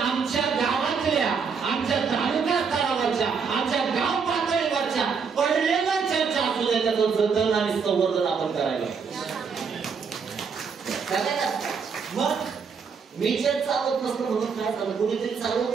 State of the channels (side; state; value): left; quieter; 5.8 dB